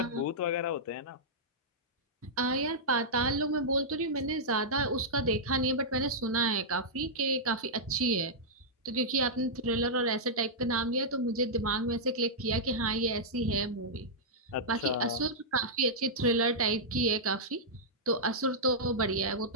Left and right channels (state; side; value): normal; both; correlation -0.10